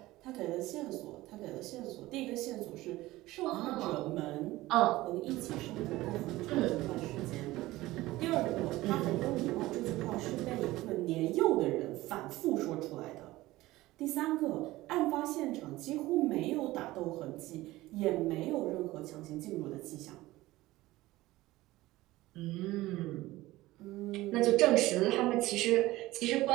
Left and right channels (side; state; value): left; quieter; 18.0 dB